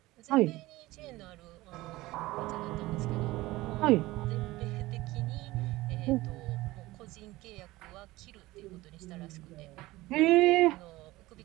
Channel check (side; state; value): left; quieter; 18.9 dB